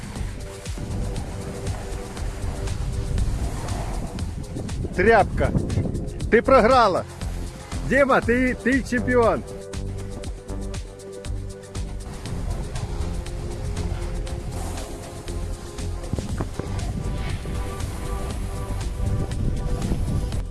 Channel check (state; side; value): identical; both; correlation 1.00